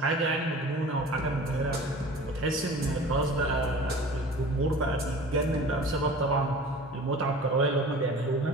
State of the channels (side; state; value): both; normal; correlation 0.42